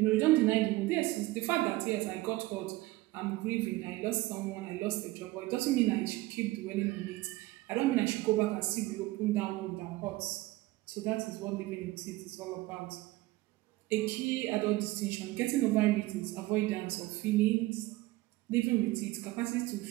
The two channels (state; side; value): quieter; left; 19.0 dB